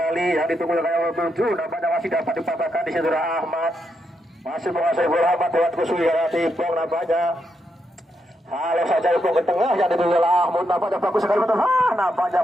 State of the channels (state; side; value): normal; both; correlation 0.81